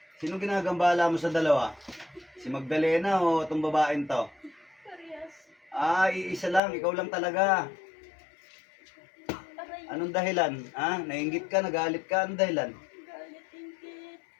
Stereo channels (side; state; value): right; drops out; at 6.6 s